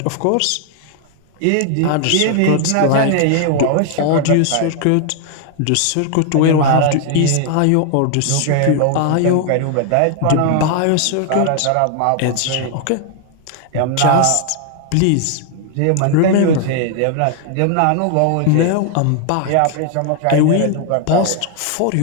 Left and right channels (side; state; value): both; different; correlation 0.00